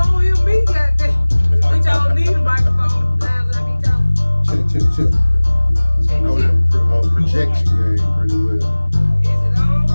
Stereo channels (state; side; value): inverted; both; correlation -1.00